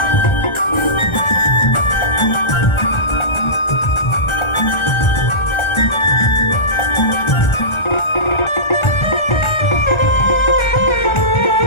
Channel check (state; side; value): late; right; 1.4 ms